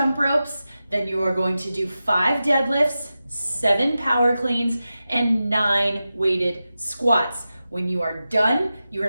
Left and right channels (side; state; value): both; inverted; correlation -0.93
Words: ropes, then you are going to do 5 deadlifts, 7 power cleans, and 9 weighted squats. When you are done,